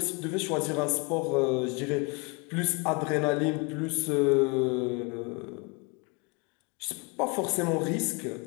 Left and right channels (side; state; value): right; quieter; 30.5 dB